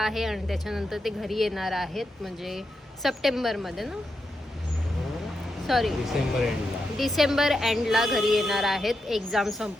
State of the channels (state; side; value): normal; both; correlation 0.86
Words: आणि त्याच्यानंतर ते घरी येणार आहेत, म्हणजे सप्टेंबरमध्ये ना, सॉरी डिसेंबर एंडला घरी येणार आहेत एक्झाम